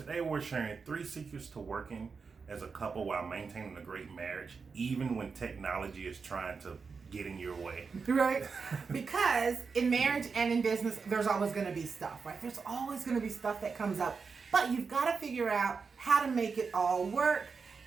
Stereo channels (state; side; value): quieter; left; 5.1 dB